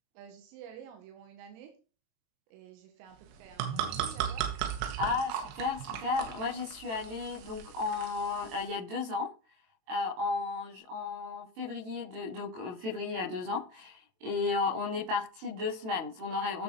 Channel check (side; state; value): left; late; 23 ms